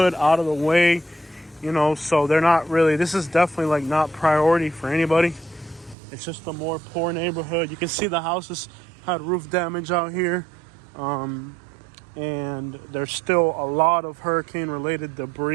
out of the way, you know, so they're not really, this is definitely like not priority for anybody. It's just a more poor neighborhood. You can see the houses had roof damage out here. And there's still a lot of hurricane-related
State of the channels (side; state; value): left; drops out; at 6.0 s